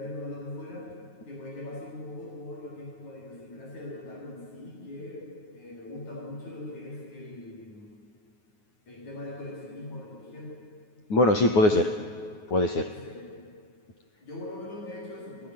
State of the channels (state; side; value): late; right; 9.5 ms